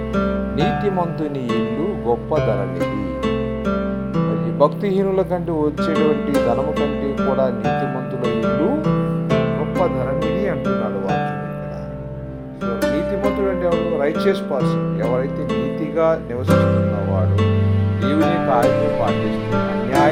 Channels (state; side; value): identical; both; correlation 1.00